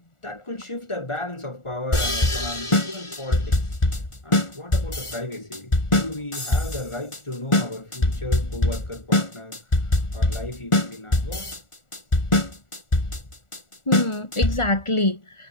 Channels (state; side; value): late; right; 1.4 ms